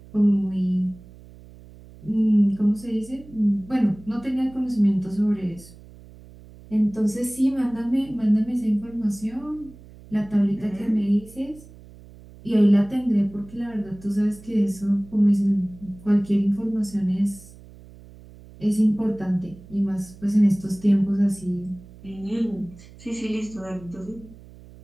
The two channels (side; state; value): right; noise; hum, 21 dB below the sound